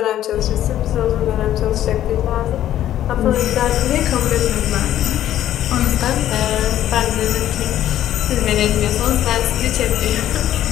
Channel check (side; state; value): right; quieter; 12.2 dB